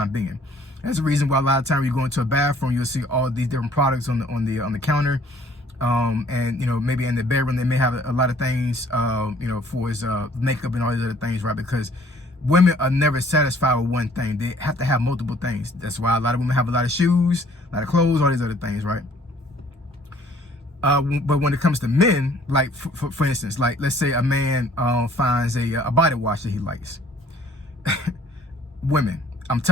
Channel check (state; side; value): normal; both; correlation 0.58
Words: being. That's the reason why a lot of times you go into a bathroom, you'll see all these different products on the counter. And, you know, maybe in the bedroom, they may have a lot of things, you know, for his makeup and all these other things, right? Because women are never satisfied with one thing. They have to have multiple things. That's why a lot of women have a lot of shoes, a lot of clothes, all these other things, right? But when it comes to men, like, for instance, like, let's say a man finds a body wash that he likes. Women, I'm